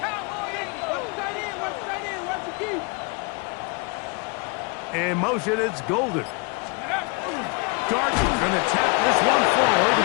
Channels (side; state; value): right; quieter; 31.2 dB